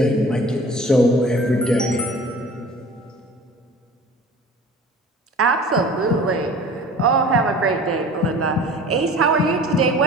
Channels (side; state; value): both; normal; correlation 0.44